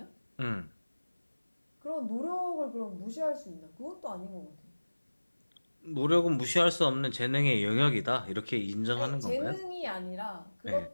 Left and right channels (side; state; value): both; inverted; correlation -1.00